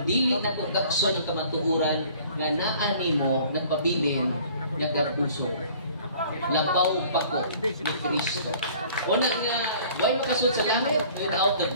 dili na kung kakson ng kamatuuran, nga naani mo, nagpabilin, nagkapuso. Labaw pa ko ni Kristo. Una nga, why makasud sa langit without the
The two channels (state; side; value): inverted; both; correlation -0.52